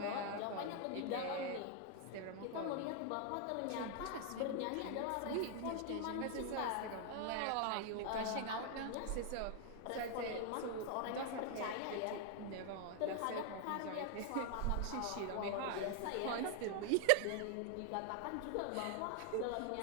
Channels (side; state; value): both; different; correlation 0.00